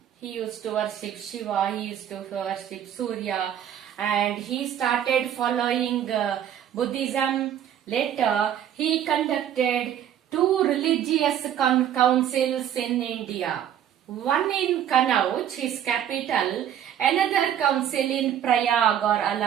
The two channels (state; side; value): quieter; left; 10.1 dB